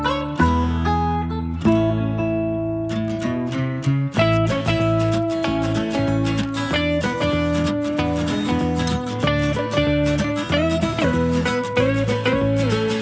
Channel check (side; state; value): both; identical; correlation 1.00